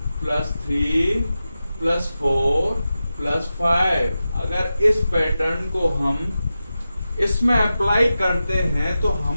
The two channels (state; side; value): inverted; both; correlation -0.92